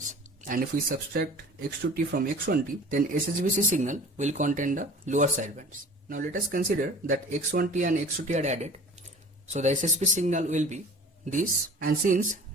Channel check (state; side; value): normal; both; correlation 0.44